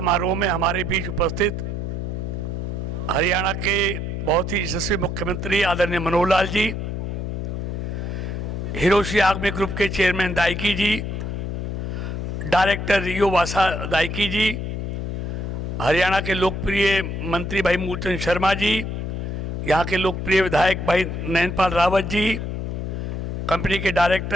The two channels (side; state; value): left; noise; hum, 3 dB below the sound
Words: में हमारे बीच उपस्थित हरियाणा के बहुत ही यशस्वी मुख्यमंत्री आदरणीय मनोहर लाल जी, हिरोशी आगमे ग्रुप के चेयरमैन दाइकी जी, डायरेक्टर रियो वासा दाइकी जी, हरियाणा के लोकप्रिय मंत्री भाई मूलचंद शर्मा जी, यहाँ के लोकप्रिय विधायक भाई नैनपाल रावत जी, कंपनी के